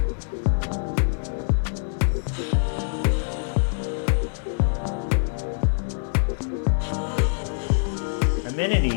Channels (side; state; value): right; silent; digital silence